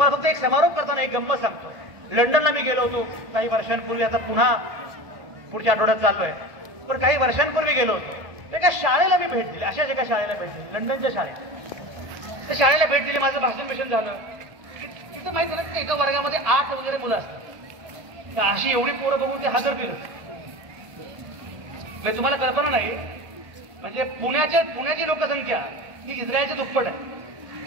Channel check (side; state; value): left; late; 1.8 ms